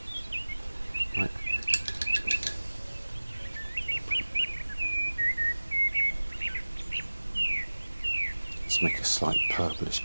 Right. Let's make a slight purplish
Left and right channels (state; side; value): inverted; both; correlation -1.00